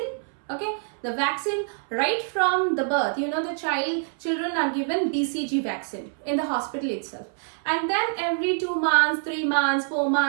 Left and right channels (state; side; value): silent; left; 61 dB below the other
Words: Okay, the vaccine right from the birth, you know, the children are given BCG vaccine in the hospital itself, and then every 2 months, 3 months, 4